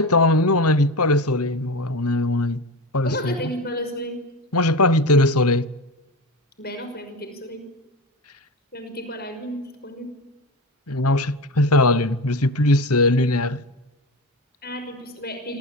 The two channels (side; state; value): both; normal; correlation 0.24